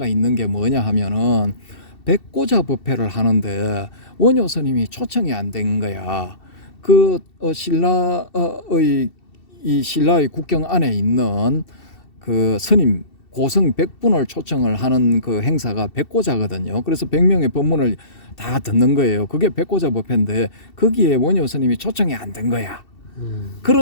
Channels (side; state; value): right; late; 2.7 ms